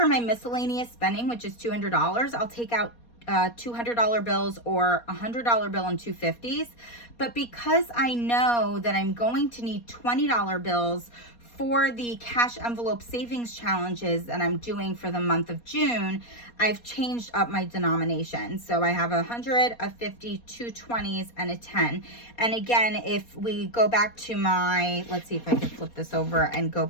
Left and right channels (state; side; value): late; right; 4.2 ms